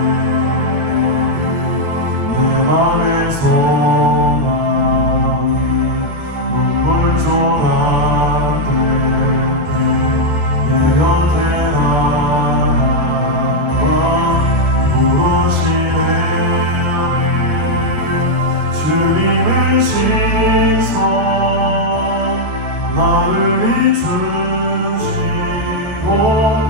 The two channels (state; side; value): late; left; 13 ms